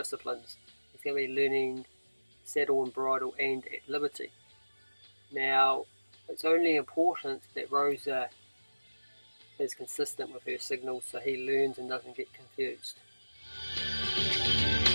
He's going to be learning saddle and bridle and at liberty. Now, it's only important that Rosa is consistent with her signals so he learns and doesn't get confused.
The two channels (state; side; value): inverted; both; correlation -1.00